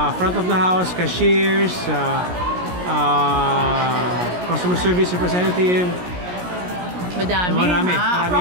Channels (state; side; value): late; left; 17 ms